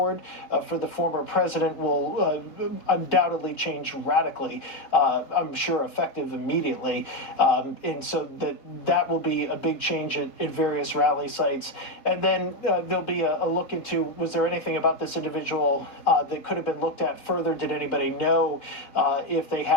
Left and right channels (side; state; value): right; late; 3.9 ms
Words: for the former president will undoubtedly change radically, I'm sure effective immediately. And so that will be a big change at various rally sites. And then there'll be a look into, was there anything about this individual that could have been looked at further? Did anybody know if they